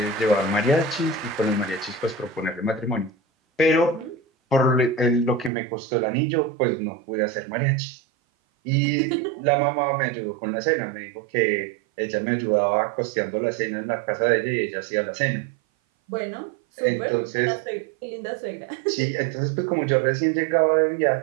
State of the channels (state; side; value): drops out; left; at 5.5 s